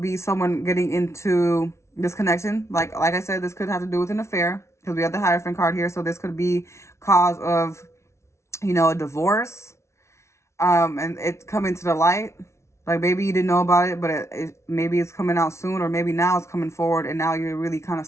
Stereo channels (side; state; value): right; late; 0.13 ms